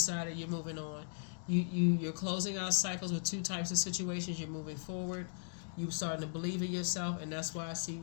you're moving on. You're closing out cycles with two types of situations. You're moving forward. You're starting to believe in yourself, and that's why I see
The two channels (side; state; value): right; silent; digital silence